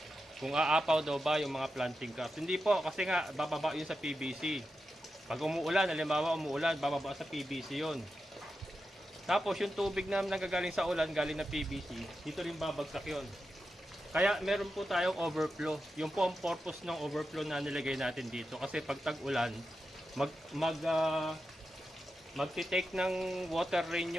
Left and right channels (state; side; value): normal; both; correlation 0.89